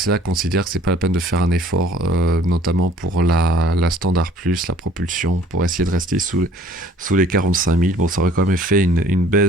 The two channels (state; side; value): normal; both; correlation 0.55